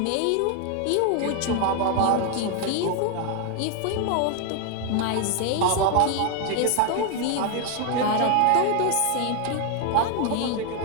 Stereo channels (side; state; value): both; different; correlation 0.01